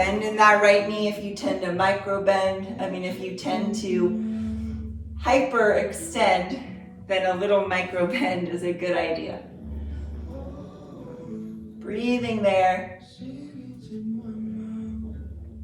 in that right knee if you tend to micro bend. If you tend to hyper extend, then a little micro bend is a good idea. Breathing there.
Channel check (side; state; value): both; identical; correlation 1.00